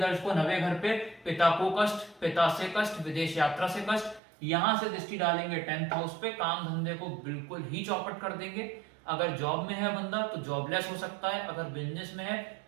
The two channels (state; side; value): drops out; left; at 4.2 s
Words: 9वें घर पे, पिता को कष्ट, पिता से कष्ट, विदेश यात्रा से कष्ट। यहाँ से दृष्टि डालेंगे 10th हाउस पे, काम धंधे को बिल्कुल ही चौपट कर देंगे। अगर जॉब में है बंदा तो जॉबलेस हो सकता है, अगर बिजनेस में है